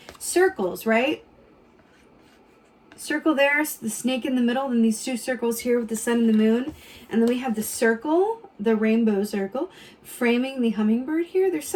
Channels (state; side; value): identical; both; correlation 1.00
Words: Circles, right? Circle there, the snake in the middle, and these two circles here with the sun and the moon. And then we have the circle, the rainbow circle, framing the hummingbird here. There's